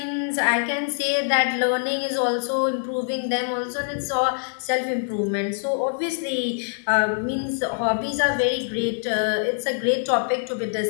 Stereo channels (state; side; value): silent; right; digital silence